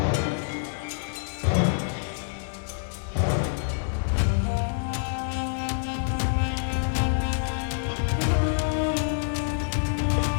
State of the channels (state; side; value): silent; right; digital silence